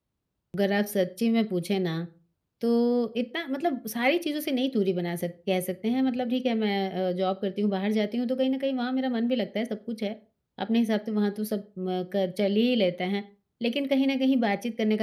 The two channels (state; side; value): identical; both; correlation 1.00